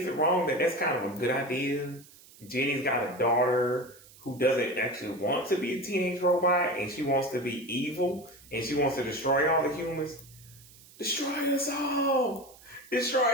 it wrong that that's kind of a good idea? Jenny's got a daughter who doesn't actually want to be a teenage robot, and she wants to be evil, and she wants to destroy all the humans. Destroy us all!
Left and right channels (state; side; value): noise; right; hiss, 23 dB below the sound